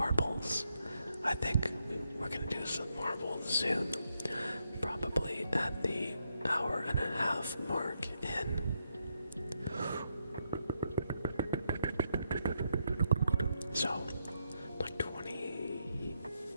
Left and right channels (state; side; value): inverted; both; correlation -0.80